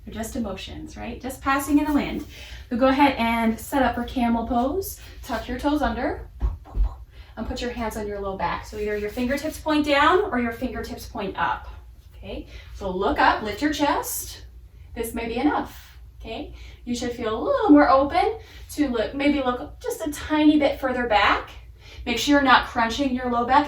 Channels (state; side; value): identical; both; correlation 1.00